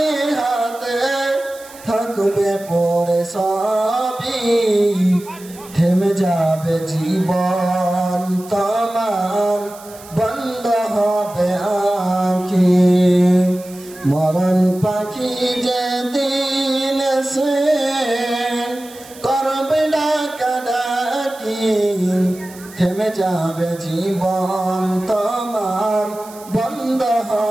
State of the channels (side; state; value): right; noise; hiss, 20 dB below the sound